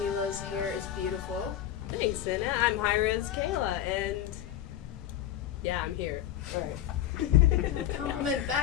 hair is beautiful. Thanks, Ena. I'm Hi-Rez Kala, and yeah, I'm here. Alright. Compliment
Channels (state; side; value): quieter; right; 11.4 dB